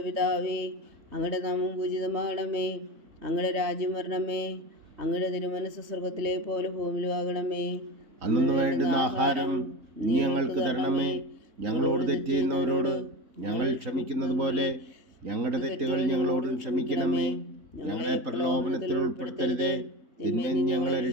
പിതാവേ, അങ്ങയുടെ നാമം പൂജിതമാകണമേ. അങ്ങയുടെ രാജ്യം വരണമേ. അങ്ങയുടെ തിരുമനസ്സ് സ്വർഗത്തിലെ പോലെ ഭൂമിയിലും ആകണമേ. അന്നു വേണ്ടുന്ന ആഹാരം നീ ഞങ്ങൾക്ക് തരണമേ. ഞങ്ങളോട് തെറ്റ് ചെയ്യുന്നവരോട് ഞങ്ങൾ ക്ഷമിക്കുന്നത് പോലെ ഞങ്ങളുടെ തെറ്റുകൾ ഞങ്ങളോടും ക്ഷമിക്കണമേ. ഞങ്ങളെ പ്രലോഭനത്തിൽ ഉൾപ്പെടുത്തരുതേ, തിന്മയിൽ ഞങ്ങളെ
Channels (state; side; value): late; left; 3.2 ms